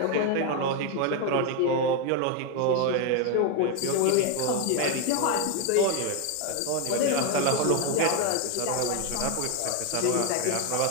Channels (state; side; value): different; both; correlation 0.01